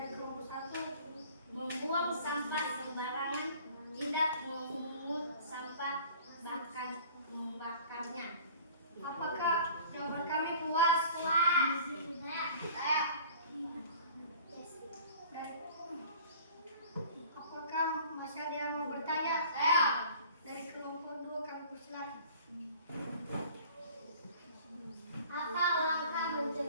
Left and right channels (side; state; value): both; inverted; correlation -0.48